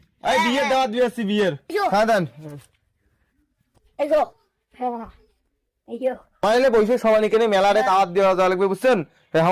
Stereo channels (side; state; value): both; identical; correlation 1.00